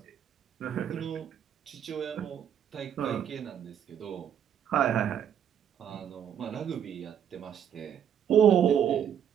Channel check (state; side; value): quieter; left; 9.0 dB